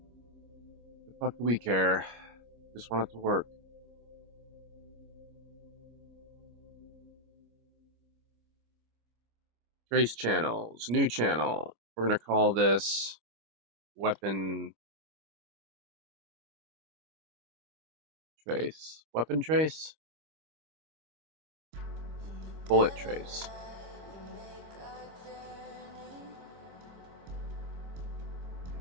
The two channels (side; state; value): left; late; 25 ms